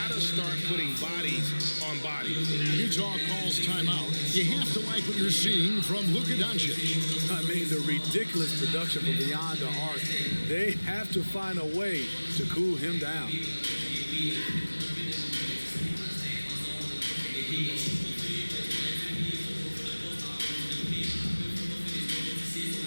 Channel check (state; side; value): inverted; both; correlation -1.00